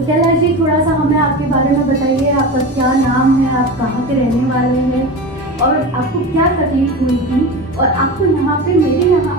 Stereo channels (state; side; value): normal; both; correlation 0.27